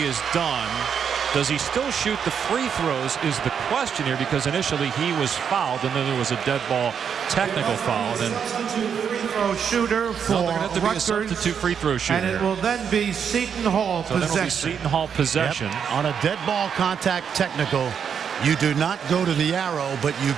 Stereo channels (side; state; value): left; quieter; 7.4 dB